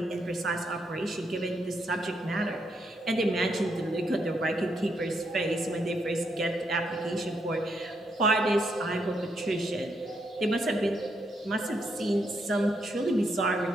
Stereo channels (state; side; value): normal; both; correlation 0.78